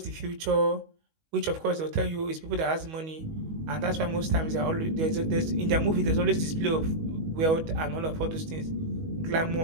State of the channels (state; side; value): late; left; 19 ms